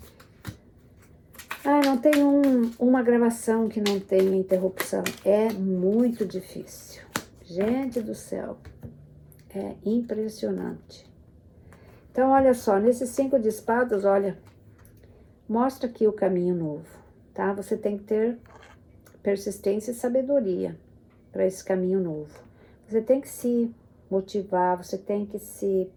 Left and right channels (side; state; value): both; identical; correlation 1.00